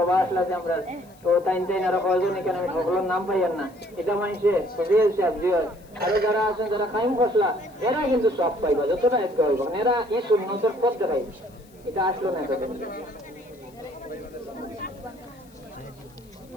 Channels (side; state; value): left; noise; hiss, 29 dB below the sound